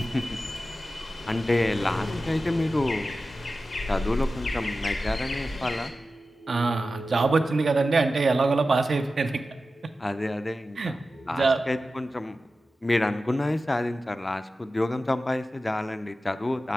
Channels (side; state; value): both; normal; correlation 0.93